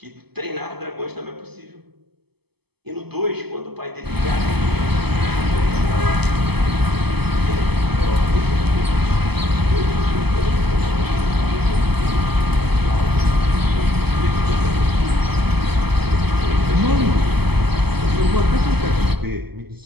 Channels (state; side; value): late; left; 0.97 ms